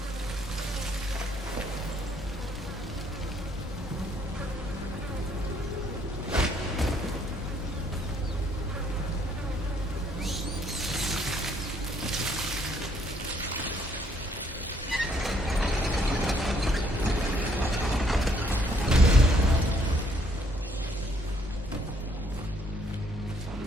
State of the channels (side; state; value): both; normal; correlation 0.67